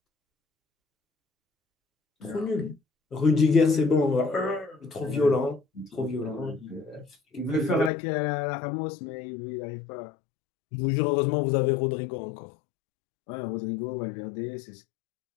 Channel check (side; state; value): right; drops out; at 7.9 s